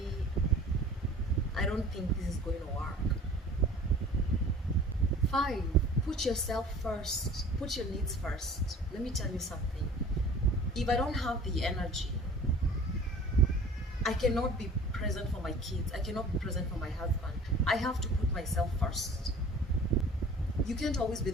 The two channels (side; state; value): both; normal; correlation 0.46